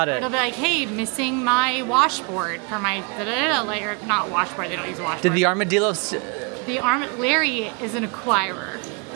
it. It'll be like, hey, missing my washboard for my or not washboard. They don't use a washboard. Did the armadillo? Larry is an acquirer.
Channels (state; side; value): quieter; left; 33.0 dB